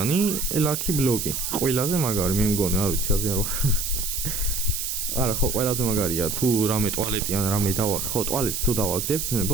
ლაკი ბლოკი. ყველაზე მაგარი, მე მგონი, არ ვიცი, აზიან რო. არა, ხო, ყველაზე მაგარია, თუ რამე ტუალეტი ან რამე დავაგდებ, ხო, ტუალეტს თუ დავაგდებ,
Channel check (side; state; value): right; noise; hiss, 3 dB below the sound